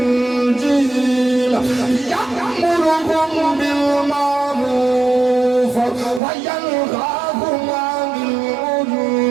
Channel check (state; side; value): drops out; left; at 6.2 s